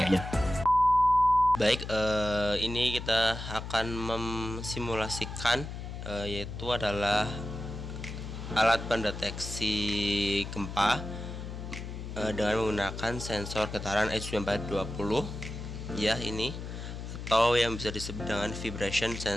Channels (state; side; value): noise; left; hum, 8 dB below the sound